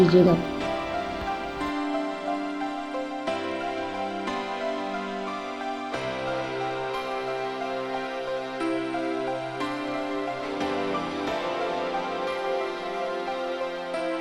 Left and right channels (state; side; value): identical; both; correlation 1.00